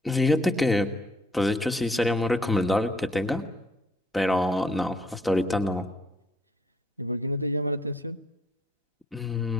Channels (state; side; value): normal; both; correlation 0.66